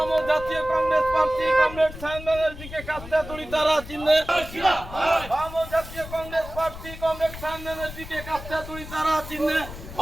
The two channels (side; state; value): left; noise; rumble, 13 dB below the sound